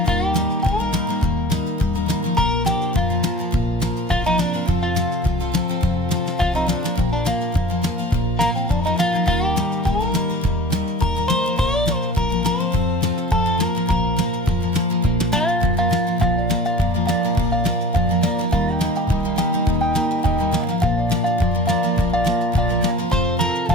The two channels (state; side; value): normal; both; correlation 0.41